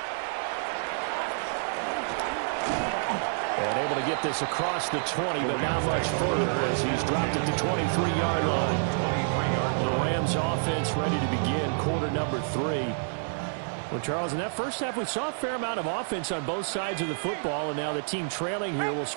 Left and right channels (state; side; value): silent; left; 59 dB below the other